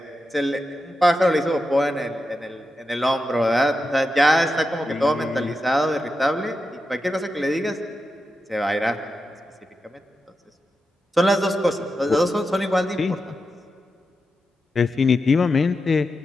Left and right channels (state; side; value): normal; both; correlation 0.89